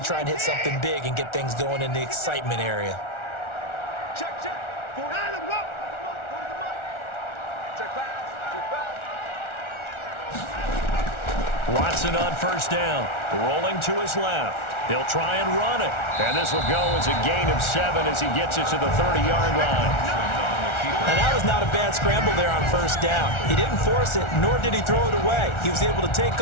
and hit something big and get things going in the excitement area. Check. Watson on 1st down, rolling to his left. He'll try and run it. And this will go as a gain of 7 as he gets it to the 30-yard line. And that was not a bad scramble there on 1st down. He didn't force it, nor did he throw it away. He was able to take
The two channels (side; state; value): right; late; 1.4 ms